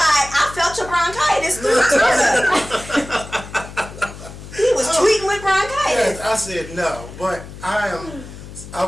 I felt your bronchitis through Twitter. He was tweeting with bronchitis. Yes, I said no, but I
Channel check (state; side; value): noise; left; hum, 14 dB below the sound